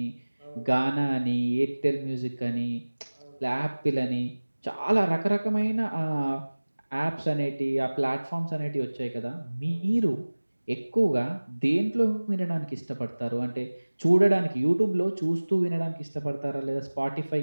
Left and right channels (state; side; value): inverted; both; correlation -1.00